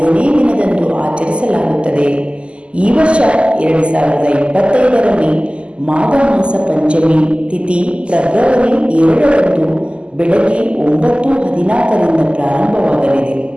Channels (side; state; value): left; late; 0.053 ms